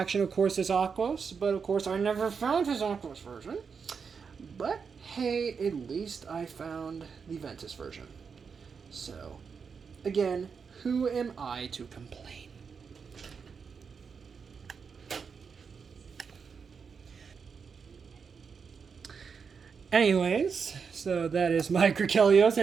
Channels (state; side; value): quieter; left; 5.9 dB